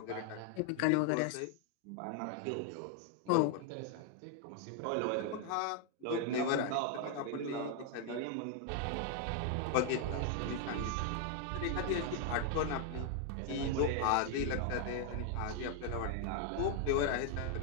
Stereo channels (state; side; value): different; both; correlation 0.00